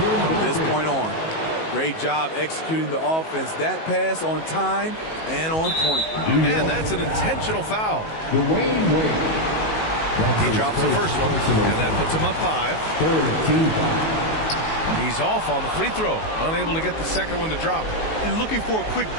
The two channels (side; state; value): right; late; 19 ms